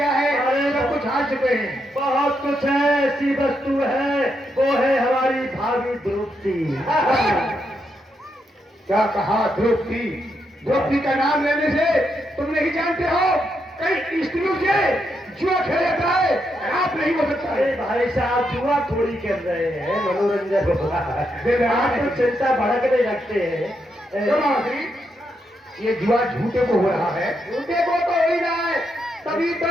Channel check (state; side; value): normal; both; correlation 0.81